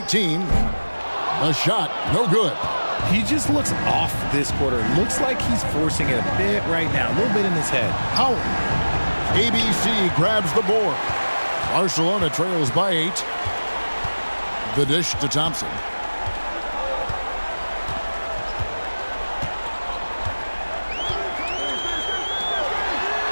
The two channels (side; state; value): both; inverted; correlation -1.00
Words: A shot, no good. He just looks off this quarter. Looks like he's forcing it a bit right now, a little bit in his head. Howard. ABC grabs the board. Barcelona trails by 8. The dish to Thompson.